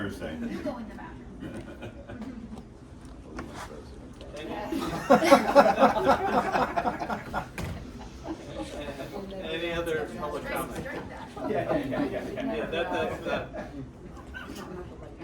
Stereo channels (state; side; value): identical; both; correlation 1.00